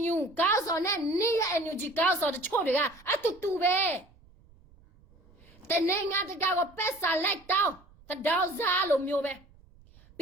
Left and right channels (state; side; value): noise; right; rumble, 27 dB below the sound